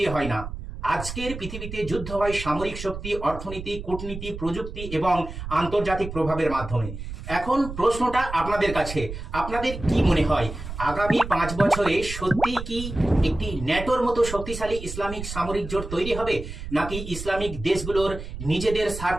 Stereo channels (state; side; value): noise; right; rumble, 9 dB below the sound